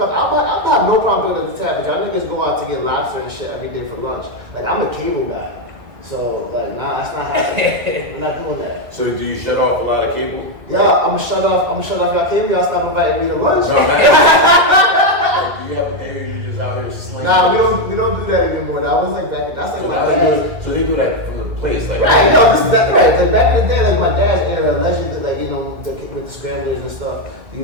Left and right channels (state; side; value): late; left; 2.2 ms